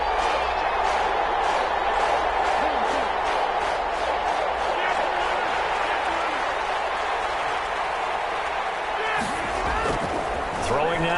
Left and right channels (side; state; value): both; identical; correlation 1.00